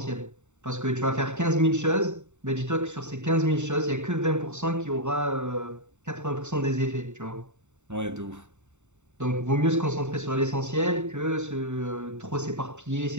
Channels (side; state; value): left; late; 0.84 ms